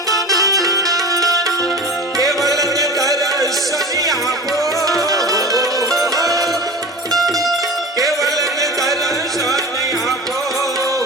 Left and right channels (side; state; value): both; normal; correlation 0.32